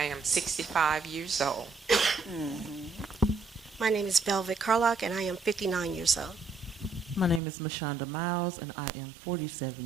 am 65 years old. Mm-hmm. My name is Velvet Carlock, and I am 59 years old. My name is Mashonda Miles, and I am 47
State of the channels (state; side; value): drops out; left; at 7.4 s